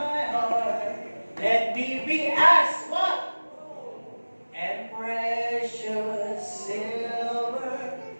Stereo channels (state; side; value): inverted; both; correlation -1.00